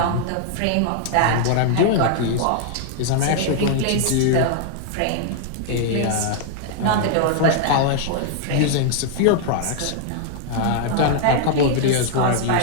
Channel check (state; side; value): different; both; correlation -0.01